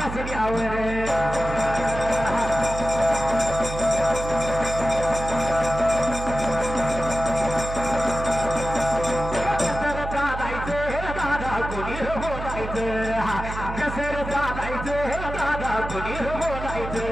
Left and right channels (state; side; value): noise; right; hum, 7 dB below the sound